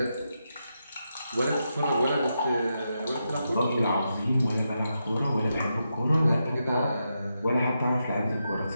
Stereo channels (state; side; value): inverted; both; correlation -0.85